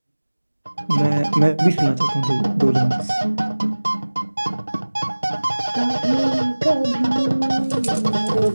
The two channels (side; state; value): both; inverted; correlation -1.00